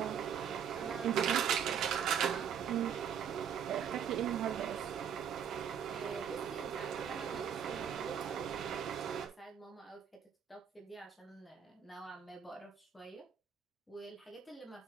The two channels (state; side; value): quieter; left; 8.0 dB